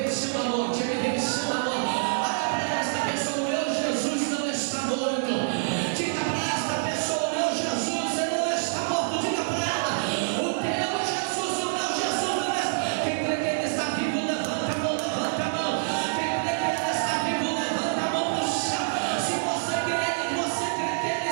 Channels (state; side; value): silent; left; digital silence